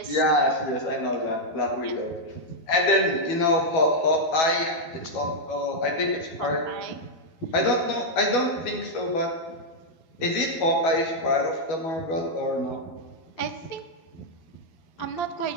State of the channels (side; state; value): right; late; 12 ms